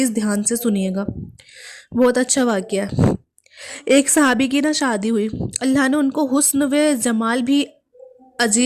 ध्यान से सुनिएगा, बहुत अच्छा वाक़या है। एक सहाबी की ना शादी हुई, अल्लाह ने उनको हुस्न व जमाल भी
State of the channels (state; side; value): identical; both; correlation 1.00